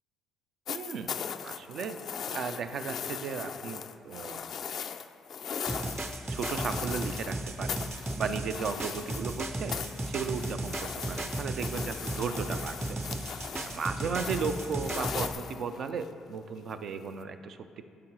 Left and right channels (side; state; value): both; normal; correlation 0.70